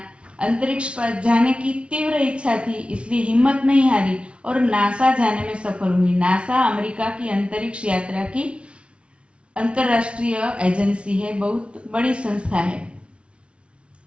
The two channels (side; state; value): left; late; 0.059 ms